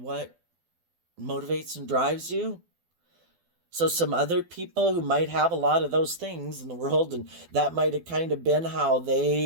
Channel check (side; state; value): left; late; 12 ms